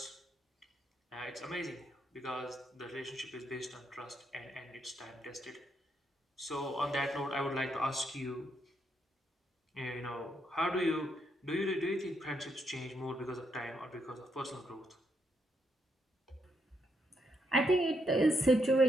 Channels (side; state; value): both; normal; correlation 0.78